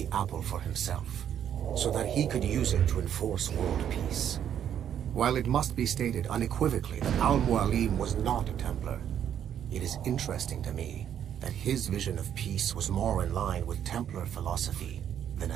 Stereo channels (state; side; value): quieter; left; 9.5 dB